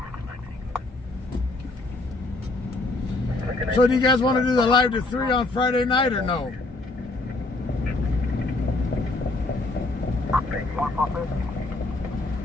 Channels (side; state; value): right; quieter; 3.0 dB